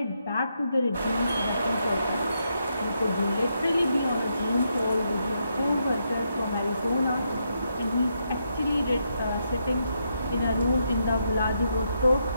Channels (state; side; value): inverted; both; correlation -0.80